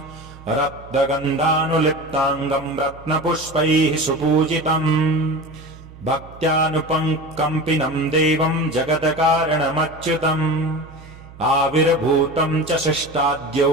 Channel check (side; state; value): right; noise; hum, 19 dB below the sound